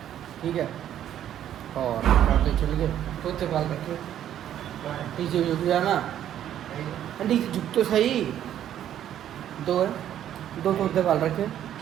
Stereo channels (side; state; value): left; quieter; 10.9 dB